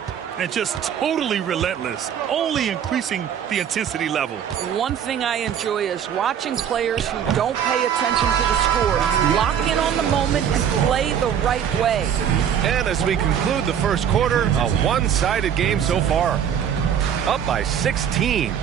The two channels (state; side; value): quieter; left; 8.7 dB